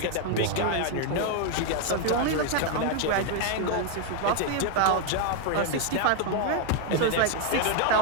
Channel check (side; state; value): both; different; correlation 0.01